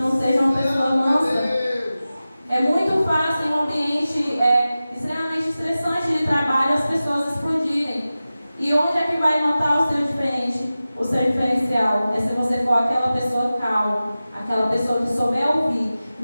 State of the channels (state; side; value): inverted; both; correlation -0.95